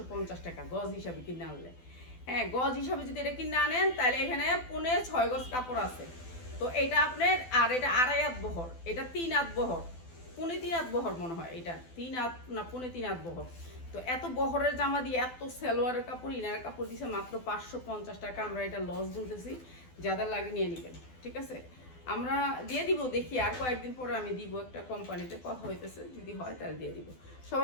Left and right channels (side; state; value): right; late; 12 ms